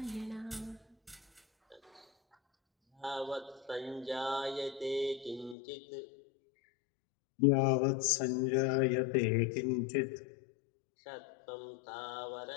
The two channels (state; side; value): drops out; right; at 5.6 s